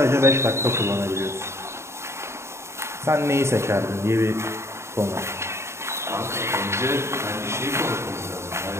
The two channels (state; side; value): late; left; 0.13 ms